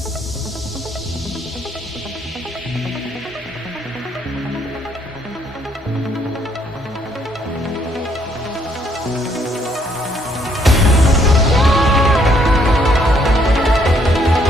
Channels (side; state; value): both; normal; correlation 0.69